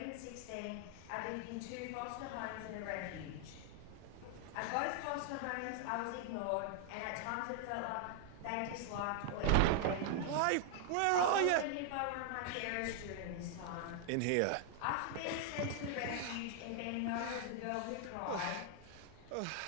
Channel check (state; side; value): different; both; correlation 0.00